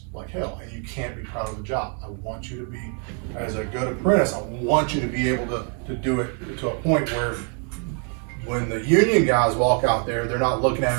like hell, and you can't be proud of the job. I want you to be, as a good apprentice, I want you to be able to do it to a point where when the union guys walk out there, they're not looking at it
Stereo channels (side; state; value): left; quieter; 39.7 dB